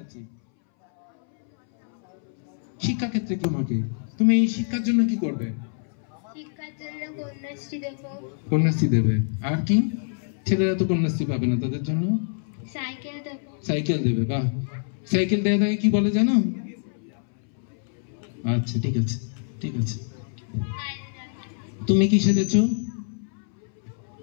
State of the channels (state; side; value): silent; right; 61 dB below the other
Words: আছি। শিক্ষা ক্ষেত্রে তোমাকে, তুমি এই শিক্ষার জন্য কি করবে? শিক্ষার জন্য কন্যাশ্রী দেব। কন্যাশ্রী দেবে। আর কি? ছেলেরা তো কন্যাশ্রী পাবে না, তাদের জন্য সাইকেল দেব। সাইকেল দেবে। বাহ, সাইকেল দেওয়া থাকে কি বলে জানো? আচ্ছা, ঠিক আছে, ঠিক আছে। তুমি কি সেজেছো?